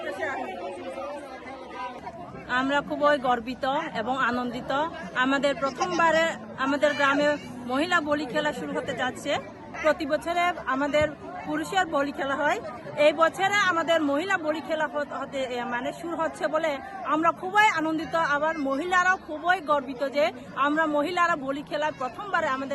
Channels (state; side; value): identical; both; correlation 1.00